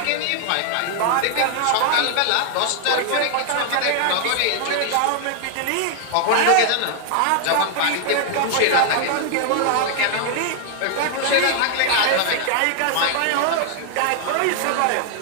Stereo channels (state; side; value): different; both; correlation 0.00